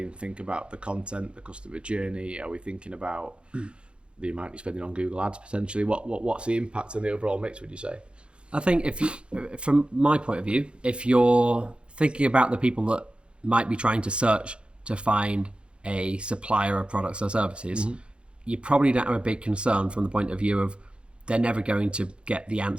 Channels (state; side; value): late; left; 0.057 ms